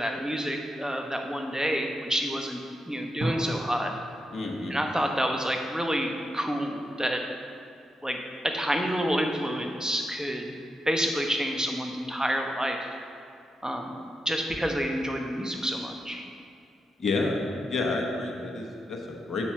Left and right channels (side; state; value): both; normal; correlation 0.85